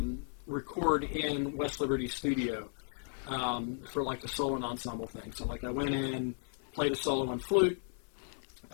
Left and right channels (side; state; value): right; silent; 54 dB below the other